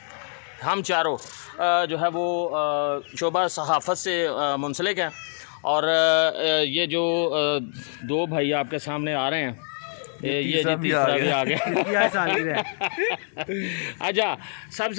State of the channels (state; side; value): silent; right; 62 dB below the other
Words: जो है वो शोबा सहाफ़त से मुंसलिक हैं। और ये जो दो भाई आपके सामने आ रहे हैं, ये तीसरा भी आ गया। अच्छा,